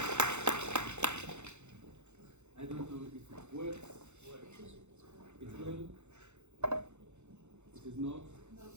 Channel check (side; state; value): left; late; 0.83 ms